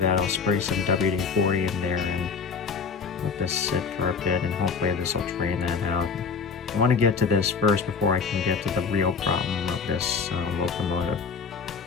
I'll spray some WD-40 in there and let this sit for a bit, and hopefully this will drain that out. I want to get to this first before I can get to the real problem of this locomotive.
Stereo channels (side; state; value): right; quieter; 5.4 dB